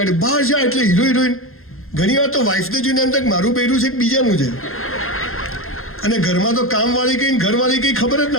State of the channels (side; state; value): right; late; 0.61 ms